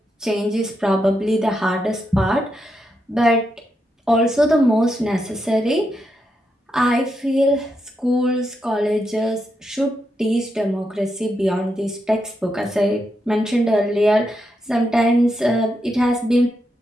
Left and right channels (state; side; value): normal; both; correlation 0.83